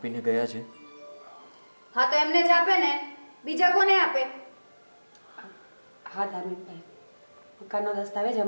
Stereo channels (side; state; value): both; inverted; correlation -1.00